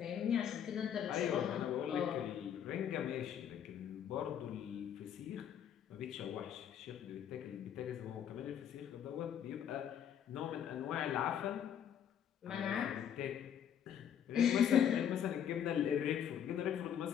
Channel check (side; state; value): right; quieter; 9.1 dB